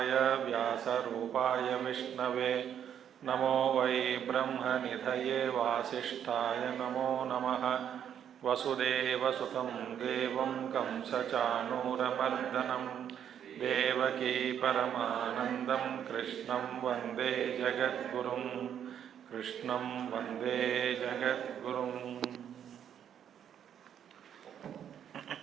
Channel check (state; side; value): quieter; left; 9.2 dB